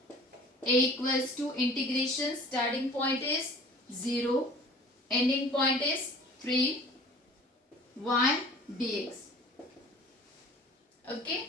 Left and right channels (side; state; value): both; normal; correlation 0.46